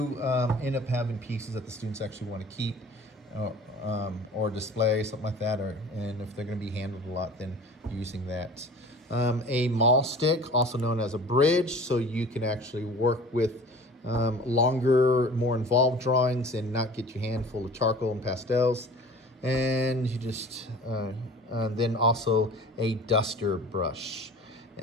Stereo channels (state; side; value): normal; both; correlation 0.43